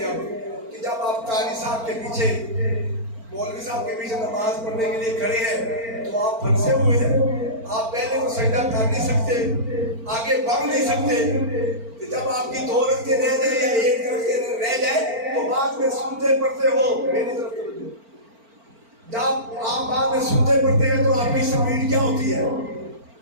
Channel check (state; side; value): late; left; 4.4 ms